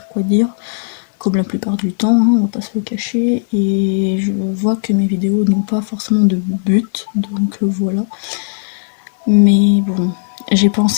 quoi dire. Comme la plupart du temps, on va pas se le cacher, et je vois que mes vidéos n'ont pas forcément de but, donc voilà. Mais bon, j'ai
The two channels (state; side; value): silent; right; digital silence